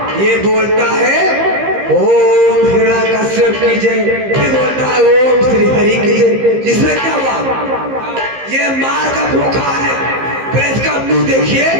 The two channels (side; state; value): left; late; 15 ms